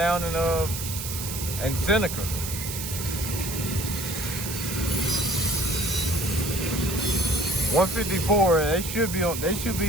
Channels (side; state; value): right; noise; hiss, 6 dB below the sound